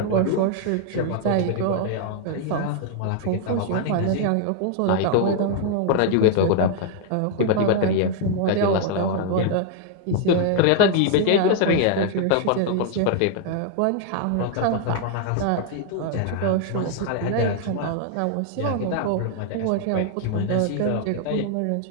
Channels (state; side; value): different; both; correlation 0.00